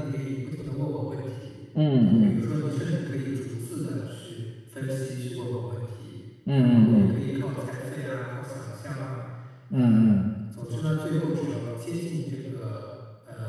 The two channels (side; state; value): both; identical; correlation 1.00